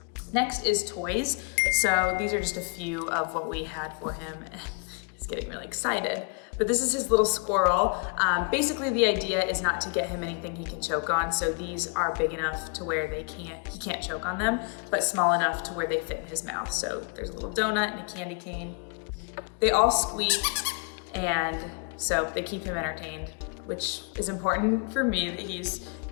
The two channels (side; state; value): right; quieter; 37.1 dB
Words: Next is toys. So these are just a few of what we had for him. He's getting really excited. But this is his little squirrel. Basically the idea is not to get him anything he can choke on. So these are big enough to where he can't choke on them, but small enough to where they fit in his mouth. So there's a little donut and a candy cane. They all squeak, and so they keep him entertained, which is important for me that he's,